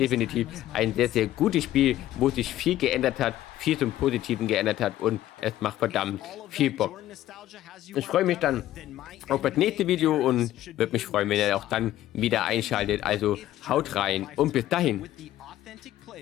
ein sehr, sehr gutes Spiel, wo sich viel geändert hat, viel zum Positiven geändert hat und es macht verdammt viel Bock. Ich freue mich dann auf das nächste Video und würde mich freuen, wenn ihr auch dann wieder einschaltet. Also haut rein und bis dahin.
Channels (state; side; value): quieter; right; 13.8 dB